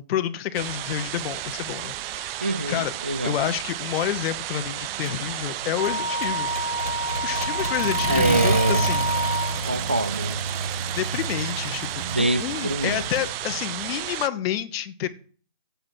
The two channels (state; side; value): inverted; both; correlation -0.34